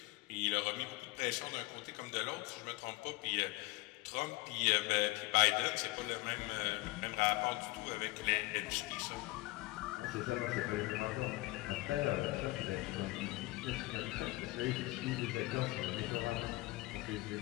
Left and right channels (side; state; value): right; quieter; 20.4 dB